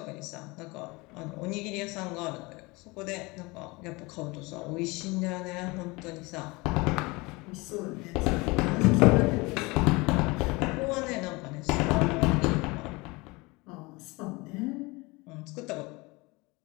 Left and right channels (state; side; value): quieter; right; 24.6 dB